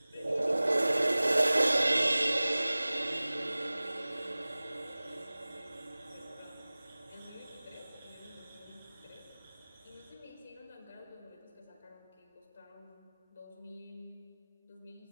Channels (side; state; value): both; inverted; correlation -0.99